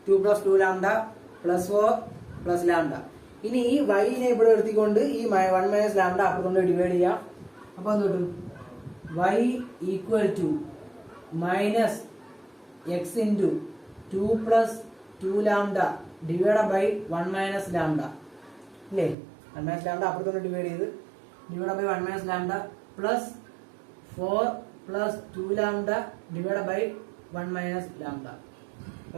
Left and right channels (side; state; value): left; drops out; at 19.2 s